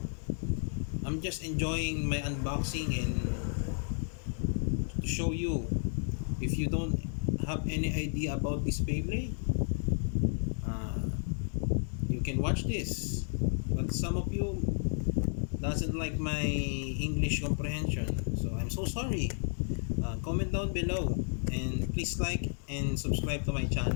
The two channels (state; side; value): silent; right; 56 dB below the other